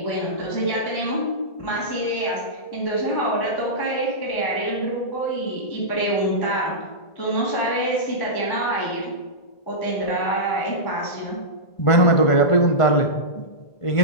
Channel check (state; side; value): late; right; 1.5 ms